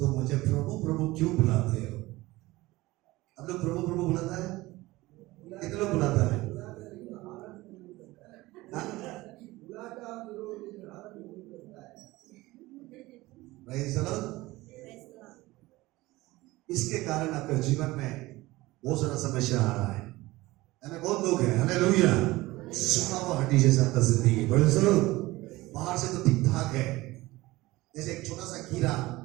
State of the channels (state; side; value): quieter; left; 19.4 dB